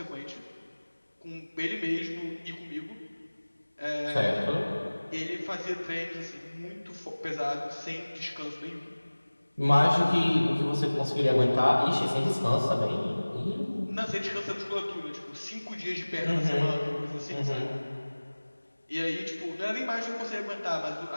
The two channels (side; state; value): both; inverted; correlation -1.00